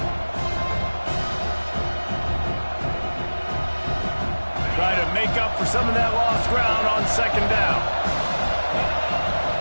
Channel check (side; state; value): both; inverted; correlation -1.00